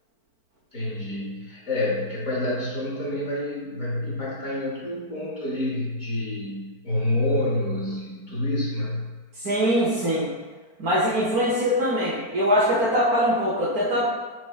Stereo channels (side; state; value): left; late; 4.5 ms